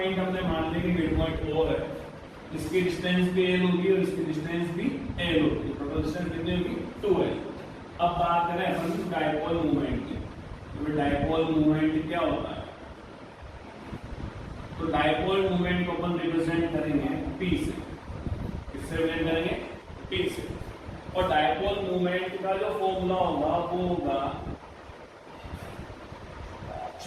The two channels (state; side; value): identical; both; correlation 1.00